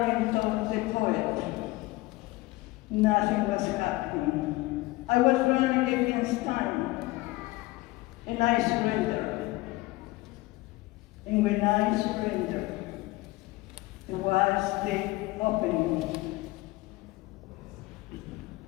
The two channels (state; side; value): quieter; right; 20.3 dB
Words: of the poet. Nothing was happening. I was running against time, and I surrendered. And when I surrendered, there was the opening